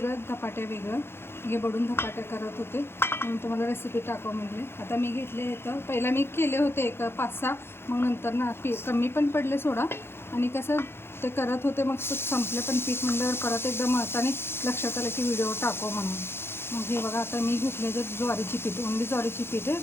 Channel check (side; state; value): right; late; 0.11 ms